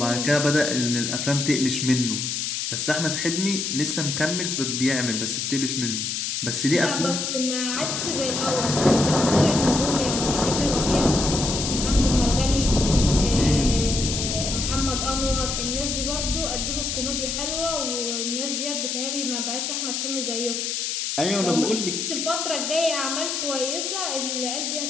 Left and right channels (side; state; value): left; noise; hiss, 2 dB below the sound